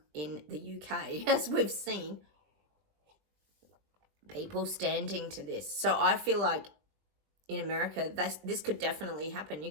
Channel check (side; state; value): left; late; 20 ms